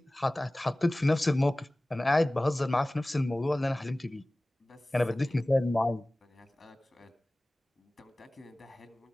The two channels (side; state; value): both; normal; correlation 0.98